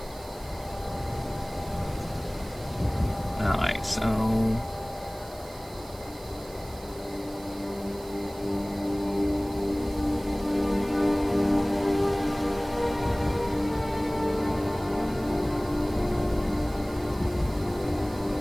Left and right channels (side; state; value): right; noise; hiss, 20 dB below the sound